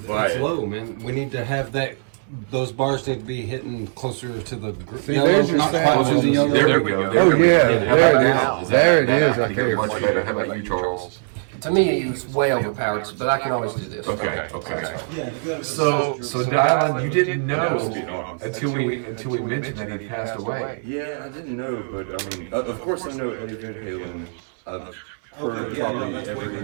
by It's it. low, man. We need to have that. Those bars need to be hitting closer to the See, there's your not sound. quite to the yellow. There we go. Oh, yeah. How about now? There it is. I think you're much better. How about you, Charles? To me, it's way overpowered, but I can always do this. Okay. Yeah, you gotta So Dylan, you didn't know until we mentioned that he passed away. Yeah, I didn't know, but I mean, of course I know Eddie Van Halen. I've heard probably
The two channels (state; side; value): silent; left; 62 dB below the other